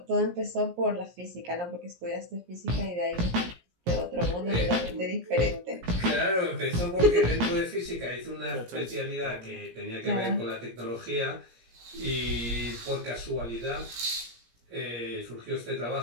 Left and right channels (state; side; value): late; left; 17 ms